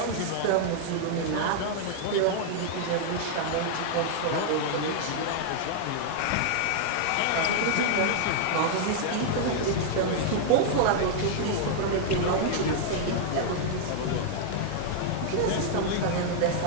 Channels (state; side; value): different; both; correlation -0.01